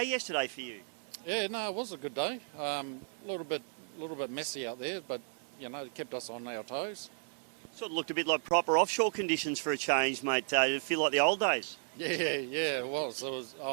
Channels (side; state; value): left; silent; 55 dB below the other